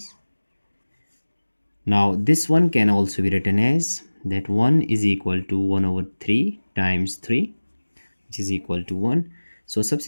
Now, this one can also be written as that 1 is equal to 1 over 3 times 3, which is equal to 1. So,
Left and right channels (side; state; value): both; inverted; correlation -1.00